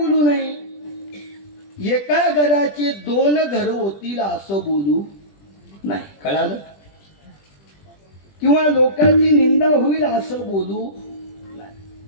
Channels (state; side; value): late; right; 20 ms